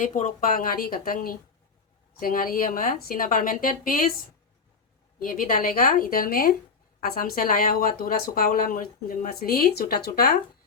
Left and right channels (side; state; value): right; quieter; 5.1 dB